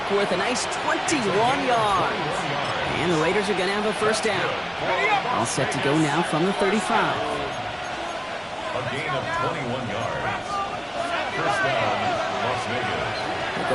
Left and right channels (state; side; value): identical; both; correlation 1.00